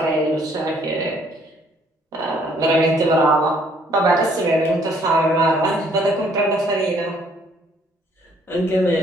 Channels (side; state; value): both; normal; correlation 0.63